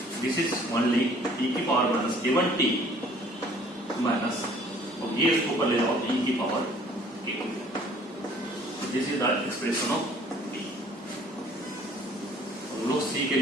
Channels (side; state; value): both; normal; correlation 0.56